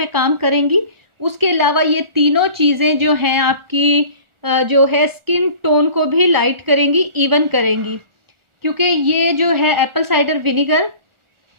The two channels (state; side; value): late; left; 1.4 ms